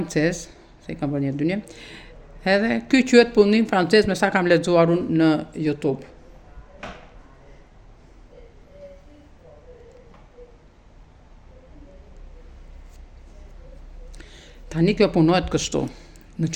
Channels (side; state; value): both; identical; correlation 1.00